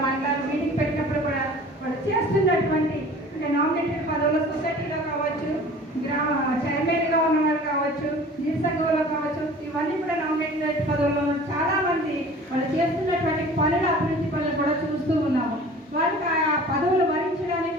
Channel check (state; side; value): normal; both; correlation 0.44